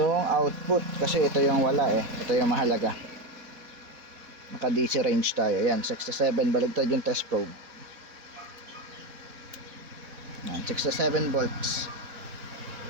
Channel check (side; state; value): left; late; 4.1 ms